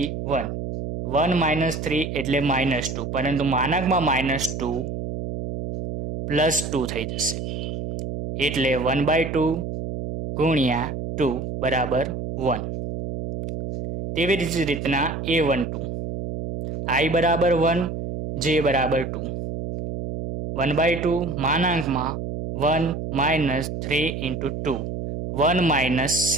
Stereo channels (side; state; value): right; noise; hum, 5 dB below the sound